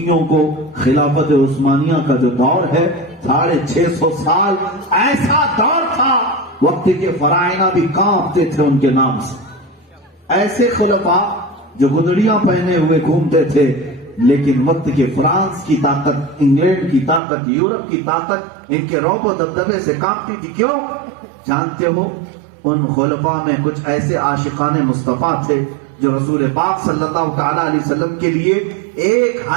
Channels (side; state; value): left; drops out; at 17.2 s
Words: کو خلافت عثمانیہ کا جو دور ہے 650 سال ایسا دور تھا وقت کے فرائض بھی کانپتے تھے ان کے نام سے۔ ایسے خلفاء جو گدڑیاں پہنے ہوئے گھومتے تھے، لیکن وقت کے فرانس کی طاقت، انگلینڈ کی طاقت، یورپ کی طاقت ان کے رعب و دبدبے سے کانپتی تھی۔ کیوں؟ جانتے ہو ان خلفاء میں کچھ ایسے عاشقان مصطفیٰ تھے جو حضور پاک صلی اللہ تعالی علیہ وسلم کے لیے ایک